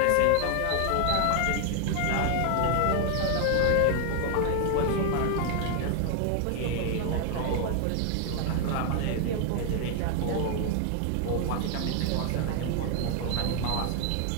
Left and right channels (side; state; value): both; different; correlation 0.00